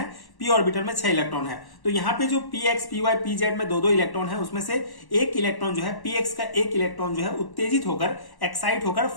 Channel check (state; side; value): late; right; 1.1 ms